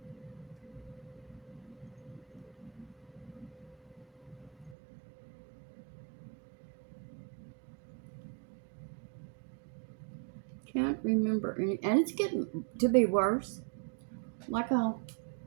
Can't remember any, and it's getting to be worse. Like I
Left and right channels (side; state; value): left; drops out; at 4.8 s